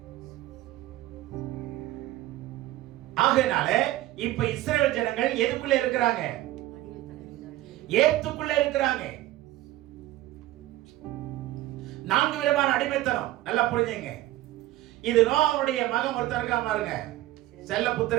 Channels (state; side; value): quieter; left; 15.6 dB